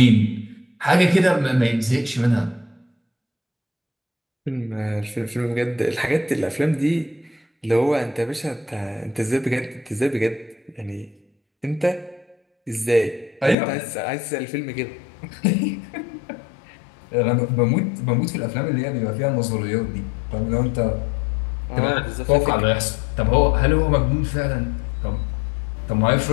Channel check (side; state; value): right; drops out; at 13.6 s